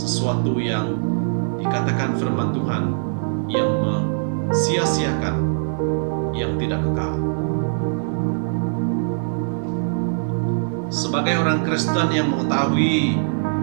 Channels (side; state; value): left; silent; 64 dB below the other